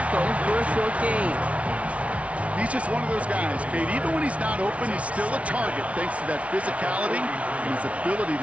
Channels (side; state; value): left; late; 0.064 ms